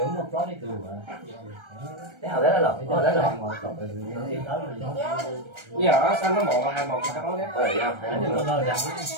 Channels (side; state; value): left; late; 1.3 ms